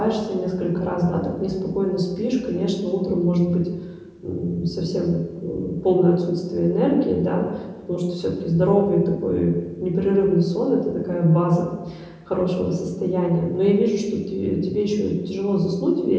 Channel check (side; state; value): both; identical; correlation 1.00